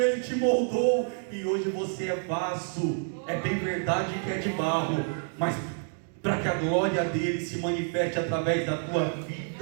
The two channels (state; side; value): silent; left; 59 dB below the other